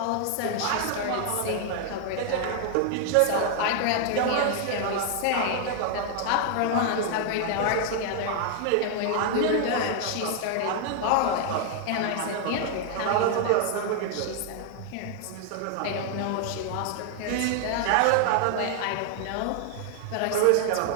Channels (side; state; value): both; different; correlation 0.00